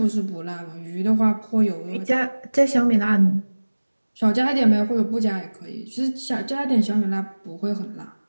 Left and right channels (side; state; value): both; inverted; correlation -1.00